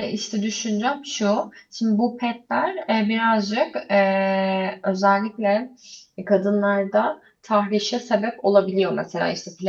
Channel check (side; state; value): both; identical; correlation 1.00